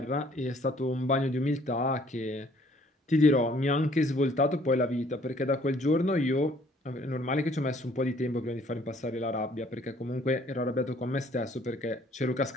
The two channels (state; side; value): normal; both; correlation 0.60